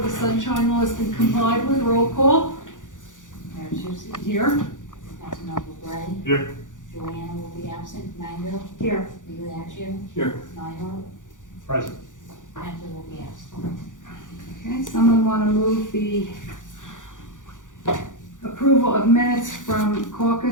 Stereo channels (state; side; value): late; right; 0.87 ms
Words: the sunshine law has been complied with. Roll call. Mayor Tucci, Here. Councilmember Gray. Here. Joanna will be absent. Mango. Here. Migliaccio. Here. Nyhart. Present. Heffley will be absent. Okay, someone want to move the approval of minutes from